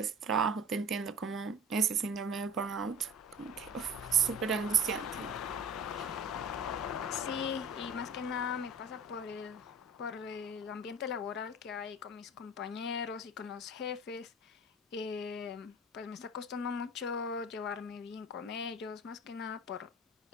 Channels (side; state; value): both; normal; correlation 0.40